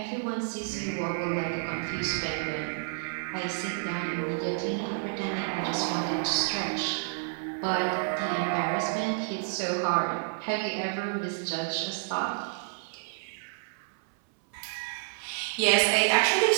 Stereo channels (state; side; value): silent; left; 58 dB below the other